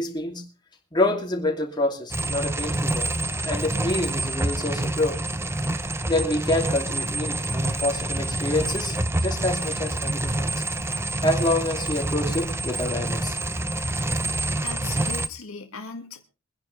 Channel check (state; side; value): normal; both; correlation 0.60